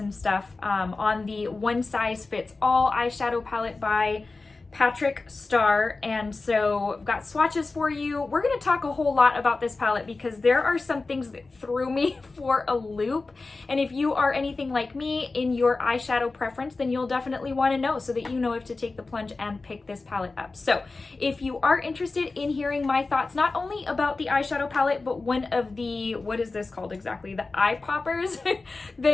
stuff on the One Size Fits All eyeshadow palette by Patrick Starrr, and so I've got swatches for you. We're going to talk a whole lot about this palette because there are some things that threw me for a loop, and if you are anything like me in your eyeshadow preference, then you'll definitely want to know so that you know if to take the plunge and pick this palette up. So if you are interested in hearing my thoughts not only about the eyeshadow palette but one of the, what is this called exactly, the eye poppers,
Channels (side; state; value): right; quieter; 3.7 dB